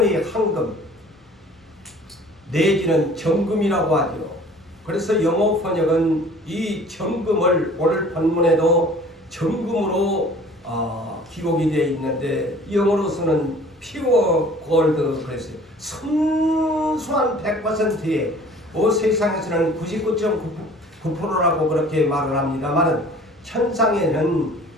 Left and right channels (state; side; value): normal; both; correlation 0.49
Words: 황금 내지는 정금이라고 하죠. 그래서 영어 번역은 이 정금을 오늘 본문에도 정금으로 기록이 되어 있는데 영어로서는 피어 골드 그랬어요. 순수한 100%의 세상에서는 99.9%라고 그렇게 말을 합니다만 천상에는